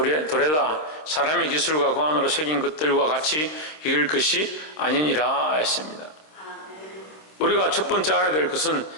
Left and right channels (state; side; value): late; right; 26 ms